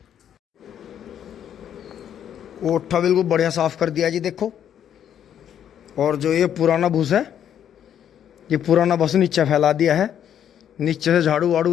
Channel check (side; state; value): right; quieter; 9.6 dB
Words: ओठा बिल्कुल बढ़िया साफ कर दिया जी देखो। और जो ये पुराना भूस है, ये पुराना बस नीचे फैला दिया है। नीचे से झाड़ू वाड़ू